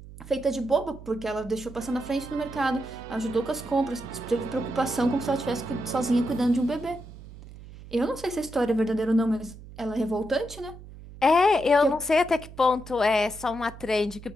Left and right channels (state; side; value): noise; right; hum, 16 dB below the sound